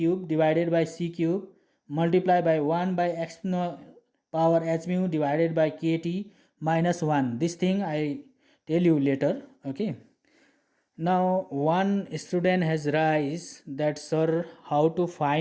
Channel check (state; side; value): identical; both; correlation 1.00